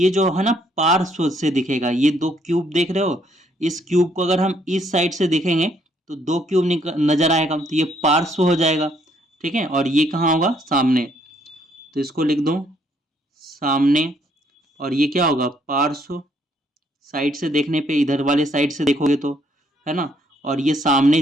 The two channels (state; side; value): normal; both; correlation 0.68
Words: जो है ना पार्श्व से दिखेगा, ये दो क्यूब देख रहे हो, इस क्यूब को अगर हम इस साइड से देखेंगे तो दो क्यूब नजर आएगा, तो ये पार्श्व हो जाएगा, ठीक है। और ये कहाँ होगा, सामने, तो इसको लिख दूं सामने। और ये क्या होगा, पार्श्व, साइड से देखने पे, इधर वाले साइड से देखोगे तो, है ना। और ये सामने,